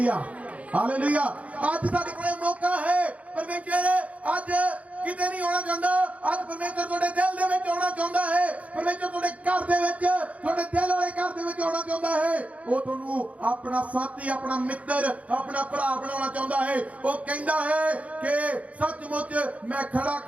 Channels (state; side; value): late; left; 0.067 ms